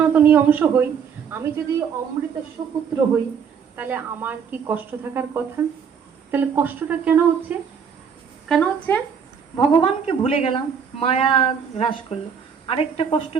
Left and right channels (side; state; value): left; quieter; 6.9 dB